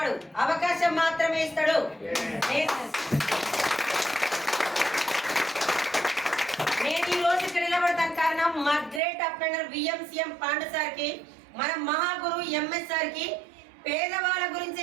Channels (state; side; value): drops out; left; at 9.0 s